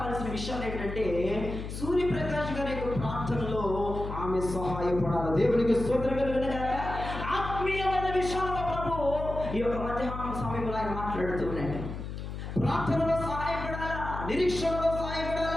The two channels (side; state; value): left; noise; hum, 7 dB below the sound